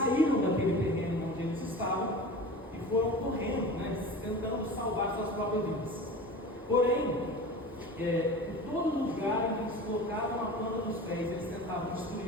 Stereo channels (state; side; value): normal; both; correlation 0.35